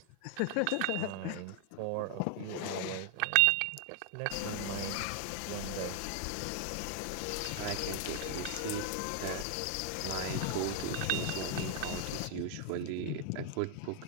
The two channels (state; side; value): different; both; correlation 0.00